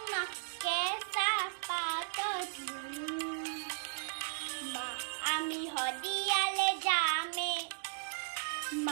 মা কেঁচা পাতত লোন মা আমি হদিয়ালে যামে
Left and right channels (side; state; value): left; silent; digital silence